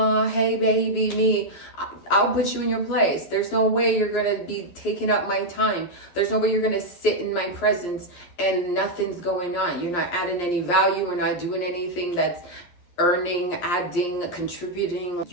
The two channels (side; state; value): right; late; 11 ms